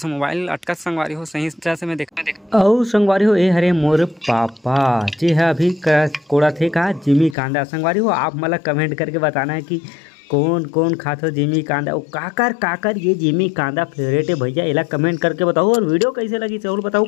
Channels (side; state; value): right; drops out; at 7.4 s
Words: मोबाइल अटकत संगवारी हो, सही तरह से मैं देख और संगवारी हो ये हरे मोर पापा जी है अभी कोड़ा थे का जिमी कांदा। संगवारी हो आप मतलब कमेंट करके बताना है कि कौन कौन खाते हो जिमी कांदा, और काकर ये जिमी कांदा फेवरेट है भैया, इला कमेंट करके बताओ। और वीडियो कैसे लगी जरूर बताओ,